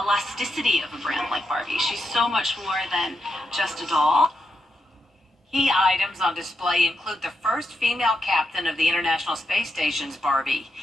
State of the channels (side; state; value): both; normal; correlation 0.84